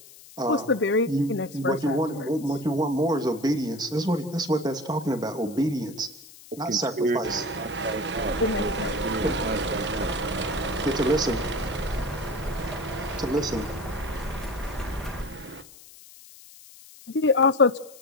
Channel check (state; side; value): noise; left; hiss, 20 dB below the sound